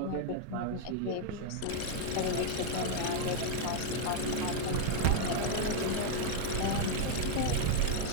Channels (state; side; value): different; both; correlation 0.00